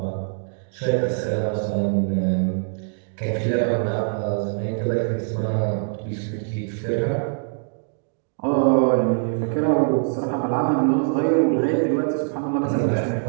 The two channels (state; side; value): silent; left; digital silence